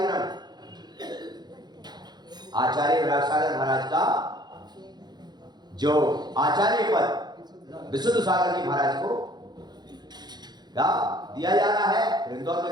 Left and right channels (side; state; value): left; late; 0.20 ms